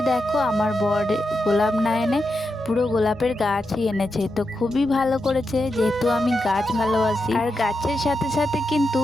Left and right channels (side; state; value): both; normal; correlation 0.87